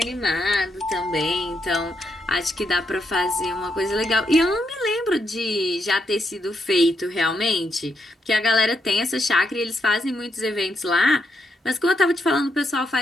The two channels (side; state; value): both; normal; correlation 0.80